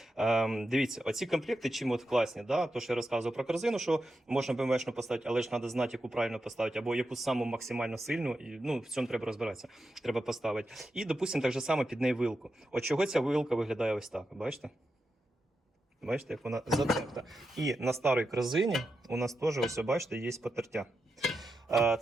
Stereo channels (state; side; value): normal; both; correlation 0.88